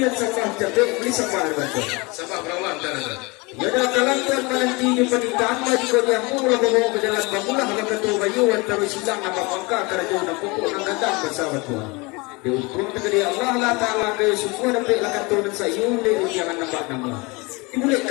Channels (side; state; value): right; quieter; 26.4 dB